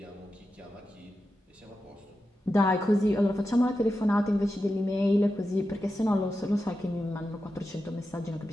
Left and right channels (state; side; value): normal; both; correlation 0.90